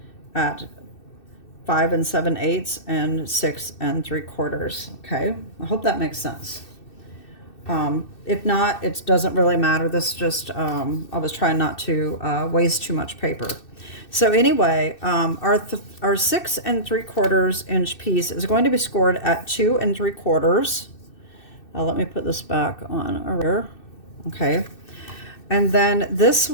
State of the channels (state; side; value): late; right; 2.6 ms